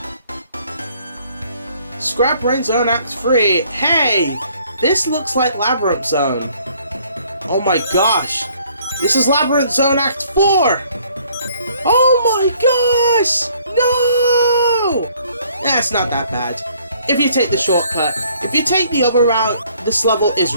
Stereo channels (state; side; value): inverted; both; correlation -0.62